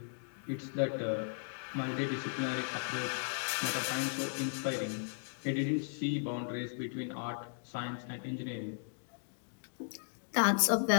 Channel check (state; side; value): silent; right; digital silence